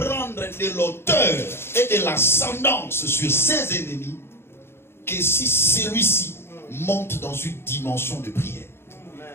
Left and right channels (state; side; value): late; right; 0.12 ms